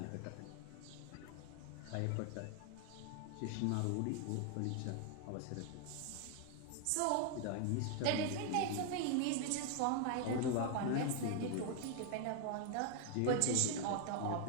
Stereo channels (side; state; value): both; different; correlation 0.01